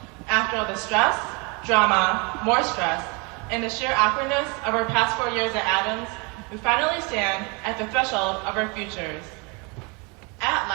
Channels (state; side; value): quieter; left; 30.2 dB